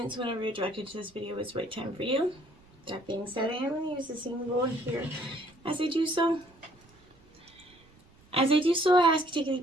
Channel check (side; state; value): right; noise; rumble, 29 dB below the sound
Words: so whenever you're directed to this video, it's the right time for you. That being said, I am going to use the symbol here. As I do so, I ask you to take a